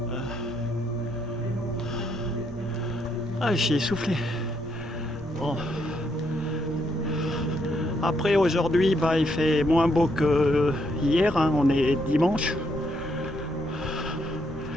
Ah, j'y ai soufflé. Bon. Après, aujourd'hui, bah, il fait moins beau que hier. Hein. On est dimanche.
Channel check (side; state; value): both; normal; correlation 0.75